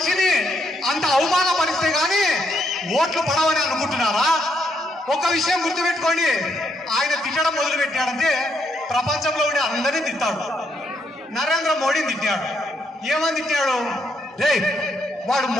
అంత అవమానపరిస్తే గాని ఓట్లు పడవని అనుకుంటున్నారా? ఒక విషయం గుర్తుపెట్టుకోండి, ఆయన తిట్టడం మొదలు పెట్టాడంటే ప్రపంచంలో ఉండే అందరినీ తిట్టాడు. నరేంద్ర మోడీని తిట్టాడు. ఏమని తిట్టాడు? రే వాడు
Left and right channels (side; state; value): both; normal; correlation 0.76